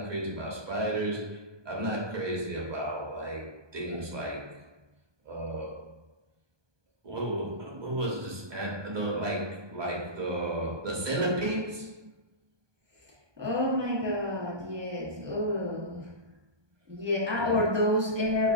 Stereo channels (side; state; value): left; late; 1.2 ms